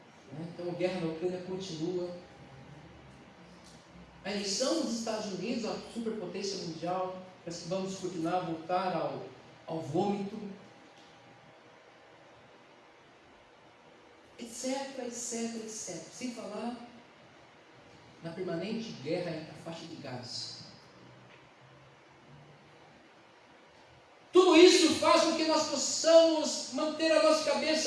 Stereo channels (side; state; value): both; identical; correlation 1.00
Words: Então a guerra na Ucrânia continua. A eleição dos Estados Unidos, a superpotência mundial, parece que vamos continuar a voltar ao vômito, etc, etc, etc. Sem falar na permanente guerra entre a faixa de Gaza. Tudo isso faz com que nós possamos manter a nossa